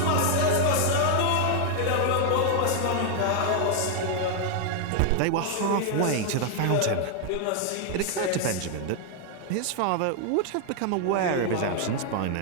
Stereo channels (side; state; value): both; different; correlation 0.00